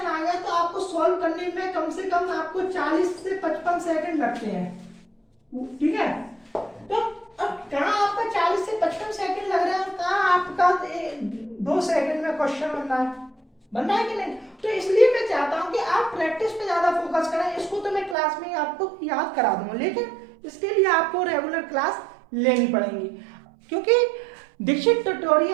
आ गया तो आपको सॉल्व करने में कम से कम आपको 40 से 55 सेकंड लगते हैं। ठीक है, तो अब कहाँ आपका 40 से 55 सेकंड लग रहा है और कहाँ आपका 2 सेकंड में क्वेश्चन बन रहा है कि नहीं? तो इसलिए मैं चाहता हूं कि आप प्रैक्टिस पे ज्यादा फोकस करें। इसको तो मैं क्लास में ही आपको याद करा दूंगा, लेकिन इसके लिए आपको रेगुलर क्लास लेनी पड़ेगी, क्योंकि दीक्षित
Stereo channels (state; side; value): drops out; left; at 18.2 s